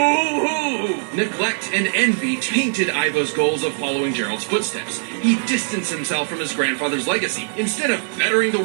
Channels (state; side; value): silent; left; 65 dB below the other